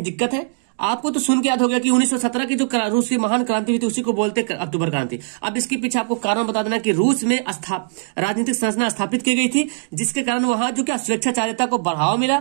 दिक्कत है? आपको तो सुन के याद हो गया कि 1917 की जो रूस की महान क्रांति हुई थी उसी को बोलते अक्टूबर क्रांति। अब इसके पीछे आपको कारण बता देना कि रूस में राजनीतिक संरचना स्थापित की गई थी जिसके कारण वहां जो क्या स्वेच्छाचारिता को बढ़ावा मिला।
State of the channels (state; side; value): silent; left; digital silence